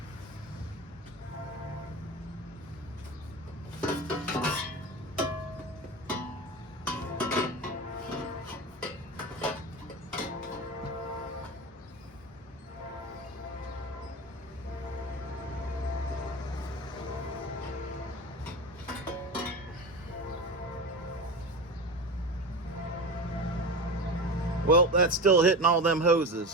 Well, that's still hitting all them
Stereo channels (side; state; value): both; normal; correlation 0.26